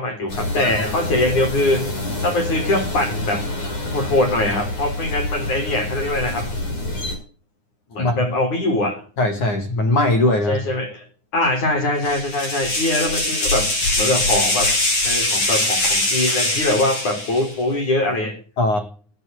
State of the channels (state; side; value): late; right; 9.7 ms